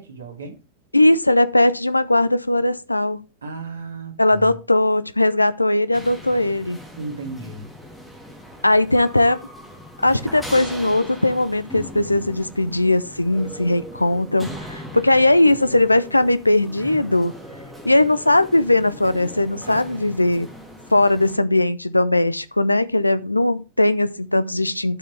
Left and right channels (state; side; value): inverted; both; correlation -0.93